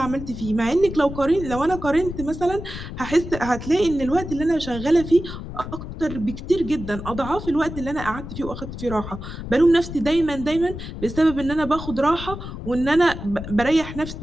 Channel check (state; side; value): noise; left; rumble, 9 dB below the sound